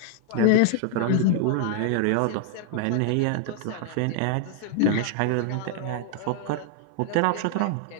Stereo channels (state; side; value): different; both; correlation 0.00